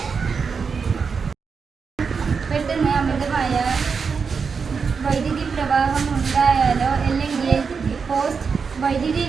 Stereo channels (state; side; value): quieter; left; 5.5 dB